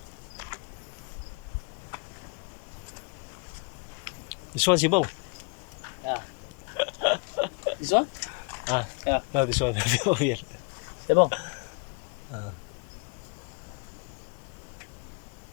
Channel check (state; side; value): quieter; right; 32.4 dB